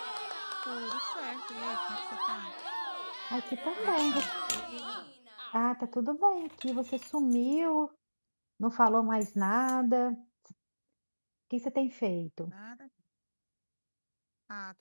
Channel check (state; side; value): inverted; both; correlation -1.00